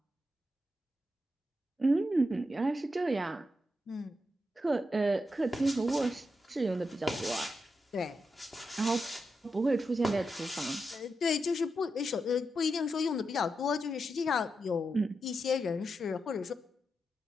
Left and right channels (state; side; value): normal; both; correlation 0.86